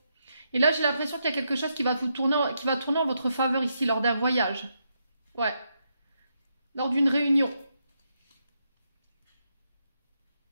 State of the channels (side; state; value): both; inverted; correlation -0.81